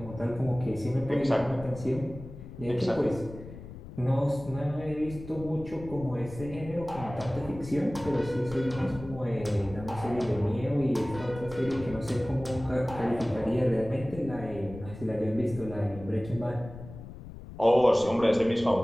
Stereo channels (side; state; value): left; noise; rumble, 14 dB below the sound